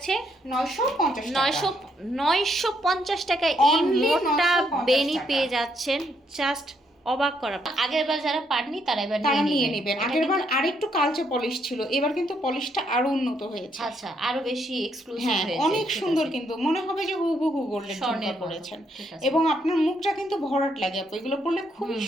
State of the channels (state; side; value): normal; both; correlation 0.74